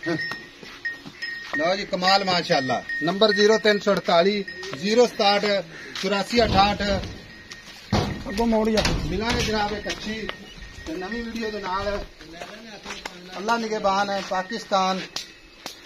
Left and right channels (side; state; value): both; identical; correlation 1.00